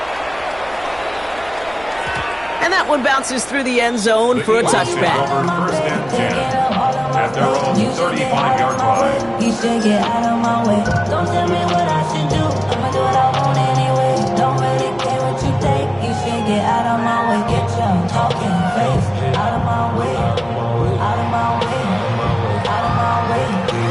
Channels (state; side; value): noise; right; hum, 21 dB below the sound